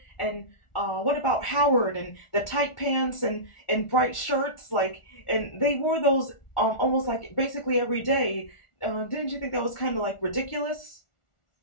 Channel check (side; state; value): right; late; 1.4 ms